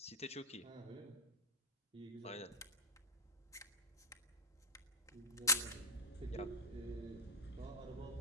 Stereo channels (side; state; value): both; normal; correlation -0.03